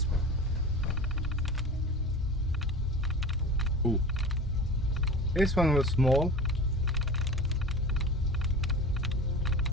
Ooh. This one was small.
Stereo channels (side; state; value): both; normal; correlation 0.34